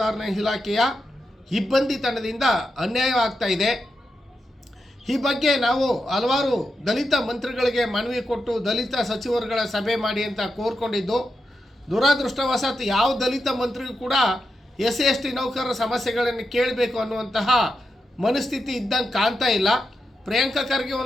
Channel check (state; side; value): normal; both; correlation 0.87